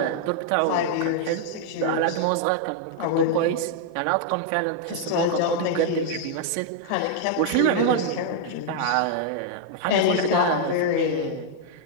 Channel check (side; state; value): both; different; correlation -0.01